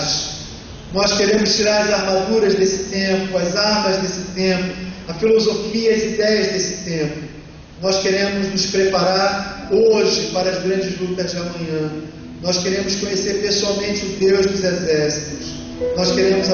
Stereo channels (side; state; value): both; identical; correlation 1.00